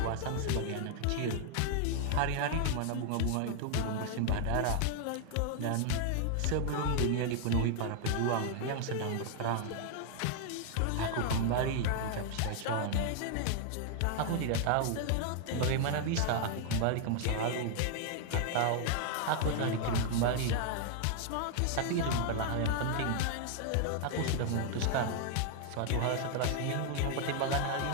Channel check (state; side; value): different; both; correlation 0.00